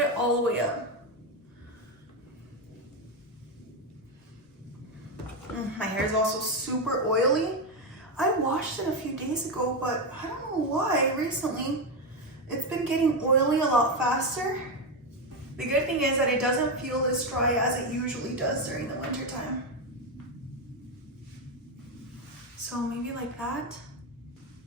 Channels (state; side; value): normal; both; correlation 0.09